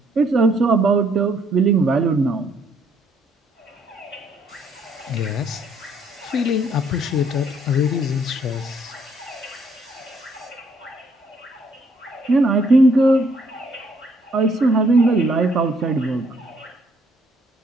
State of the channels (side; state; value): both; normal; correlation 0.68